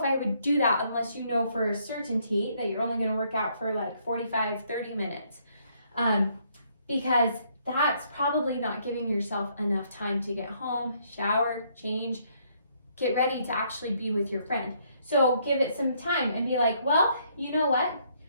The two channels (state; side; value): inverted; both; correlation -0.69